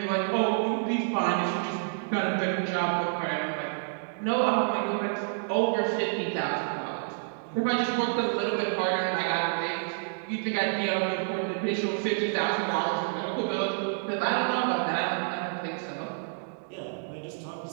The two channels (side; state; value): left; silent; digital silence